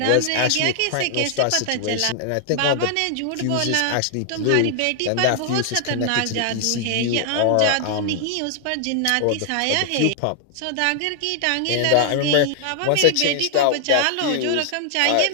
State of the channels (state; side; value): different; both; correlation 0.00